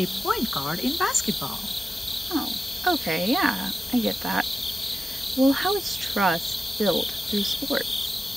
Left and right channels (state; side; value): normal; both; correlation 0.92